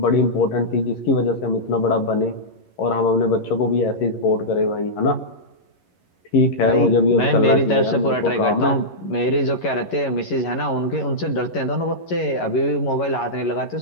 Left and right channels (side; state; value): right; late; 11 ms